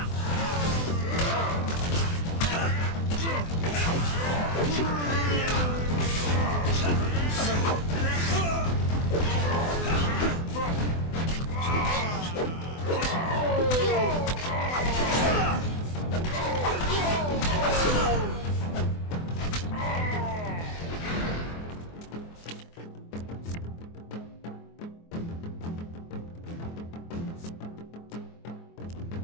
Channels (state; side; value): late; right; 24 ms